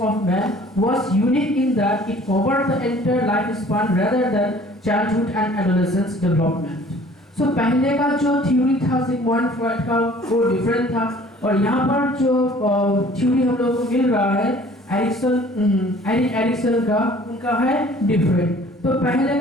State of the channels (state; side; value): normal; both; correlation 0.52